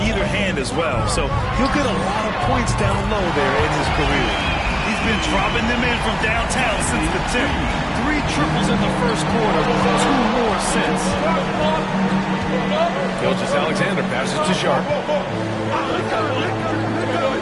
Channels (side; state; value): both; identical; correlation 1.00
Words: either hand as well. So he'll get a lot of points down low there in his career. He's been dropping them in from downtown since the tip. 3 triples in the first quarter, 2 more since. Gilgeous-Alexander passes to Sharp.